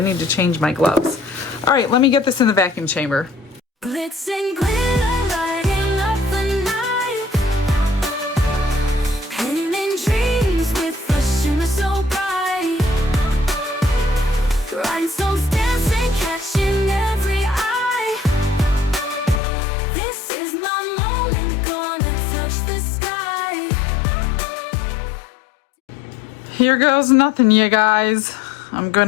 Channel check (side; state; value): right; drops out; at 19.4 s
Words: to change my gloves. All right, let me get this in the vacuum chamber. Glitz and glitter, lighting up the night. Painting dreams with a shimmer so bright. Rhinestones dancing, catching every eye. This is my moment, gonna touch the sky. Here goes nothing, you guys. I'm